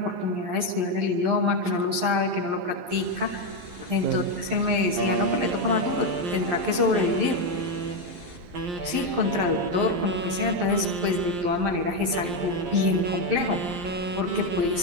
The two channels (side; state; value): left; late; 11 ms